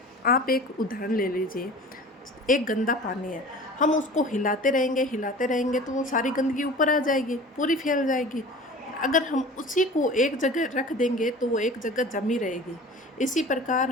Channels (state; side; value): normal; both; correlation 0.40